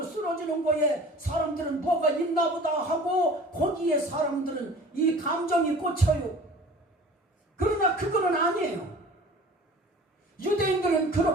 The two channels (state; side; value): normal; both; correlation 0.44